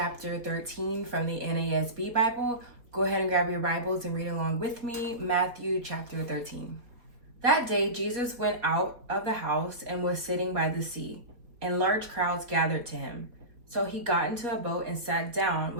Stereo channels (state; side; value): late; left; 4.2 ms